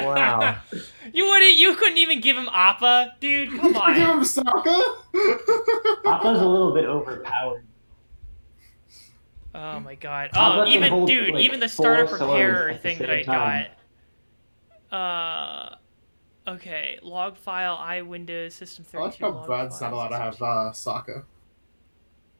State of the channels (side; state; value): both; inverted; correlation -1.00